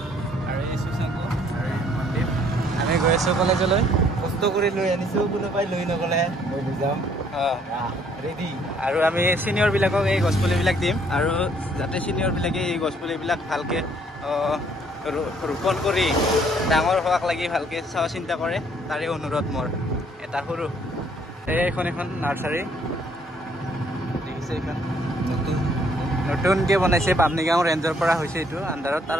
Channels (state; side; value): normal; both; correlation 0.64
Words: আৰু এই সুশাংক আৰু এই মন্দিৰ আমি গৈ আছোঁ কলেজলৈ কষ্ট কৰি লৈ আনিছোঁ কোনোবাই লৈ নগ'লে মই বুজাম ৰেডি আৰু আমি ছিনিয়ৰবিলাকক এই গছপুলিবিলাক দিম আৰু যাতে ছিনিয়ৰবিলাকে এই গছপুলিবিলাক ভালকৈ ৰোপণ কৰি ডাঙৰ হোৱাক লাগি ভালকৈ চোৱা চিন্তা কৰে তাৰে অনুৰোধ মোৰ এটা সৰু এইখন এখন নাৰ্চাৰী দেখিছে এইখন নতুনকৈ বনাইছে বামনিগাঁও ৰেঞ্জৰ পৰা হৈছে এইটো আণ্ডাৰত তাৰ